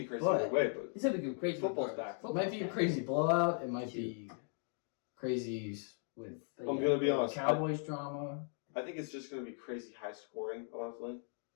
crazy But- either way, but It's gonna be crazy. Football's back. It might be a crazy blowout. It might be crazy with I'm gonna be honest. Cowboys drama. I think it's just gonna be crazy high scoring, honestly.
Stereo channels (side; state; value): right; silent; 53 dB below the other